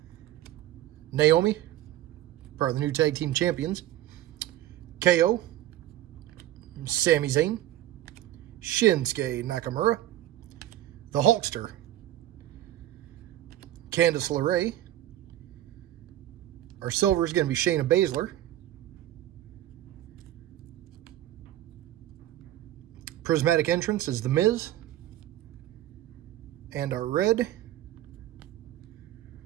Naomi, part of the new tag team champions. KO. Sami Zayn. Shinsuke Nakamura. The Hulkster. Candice LeRae. Our silver is going to be Shayna Baszler. Prismatic entrance is The Miz. And our red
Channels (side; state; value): left; quieter; 13.5 dB